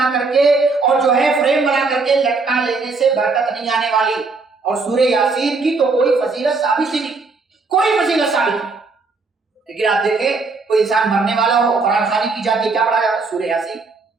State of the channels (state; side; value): quieter; left; 4.1 dB